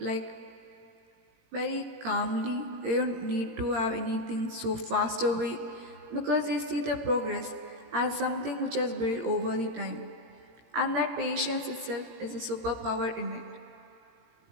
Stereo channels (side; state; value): left; late; 17 ms